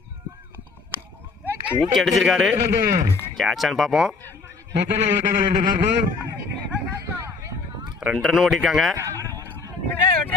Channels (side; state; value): right; quieter; 4.4 dB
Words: தூக்கி அடிச்சிருக்காரு. கேட்சான்னு பார்ப்போம். 2 ரன் ஓடிருக்காங்க.